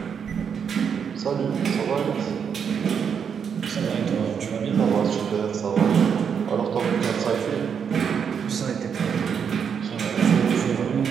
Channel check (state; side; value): quieter; left; 7.1 dB